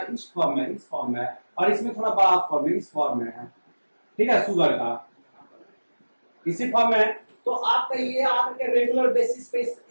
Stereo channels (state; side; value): inverted; both; correlation -1.00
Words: इस फॉर्म में और इसमें थोड़ा बड़ा फॉर्म है, इस फॉर्म में है, ठीक है, शुगर का इसी फॉर्म में। तो आपका ये आके रेगुलर बेसिस पे